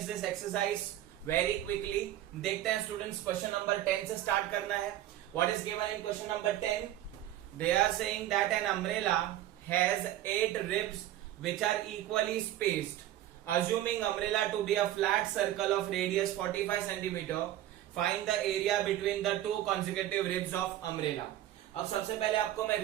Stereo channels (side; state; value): left; quieter; 13.2 dB